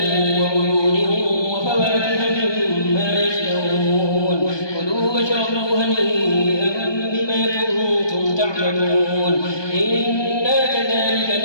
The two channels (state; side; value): late; right; 1.2 ms